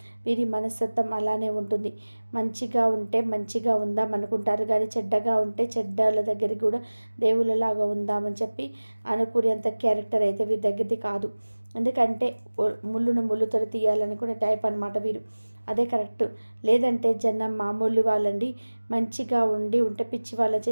వీరి మనస్తత్వం అలానే ఉంటుంది. మంచిగా ఉంటే మంచిగా ఉందాం అనుకుంటారు, కానీ చెడ్డగా ఉంటే చెడ్డల దగ్గరికి కూడా దేవుళ్ళలాగా ఉందామని చెప్పి అనుకునేంత క్యారెక్టర్ అయితే వీరి దగ్గరది కాదు. ఎందుకంటే ముళ్ళును ముళ్ళుతో తీయాలనుకునే టైప్ అనమాట వీరు. అదే కరెక్ట్. లేదంటే జనం మామూలు వాళ్ళండి, మంచిగా ఉంటే పిచ్చి వాళ్ళ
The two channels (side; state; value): both; inverted; correlation -1.00